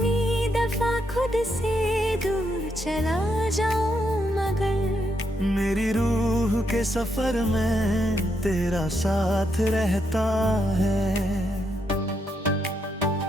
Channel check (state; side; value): normal; both; correlation 0.79